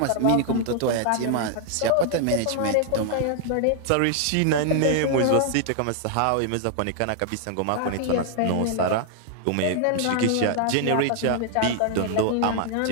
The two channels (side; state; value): both; different; correlation 0.00